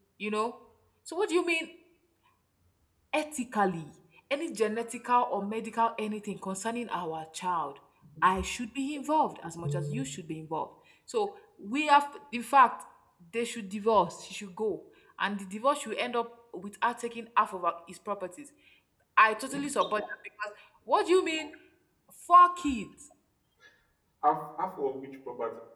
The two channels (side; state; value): both; identical; correlation 1.00